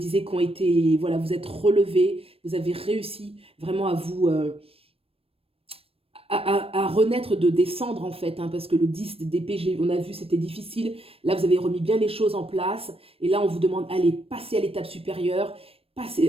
qui ont été, voilà, vous êtes relevés, vous avez réussi vraiment à vous, à renaître de des cendres en fait, hein, parce que le 10 d'épée, on a vu, c'était difficile. Là, vous avez remis bien les choses en place. Et là, on vous demande, allez, passez à l'étape supérieure.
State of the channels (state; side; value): late; left; 0.28 ms